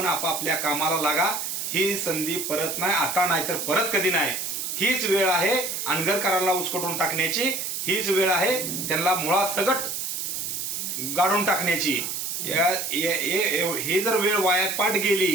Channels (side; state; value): right; noise; hiss, 4 dB below the sound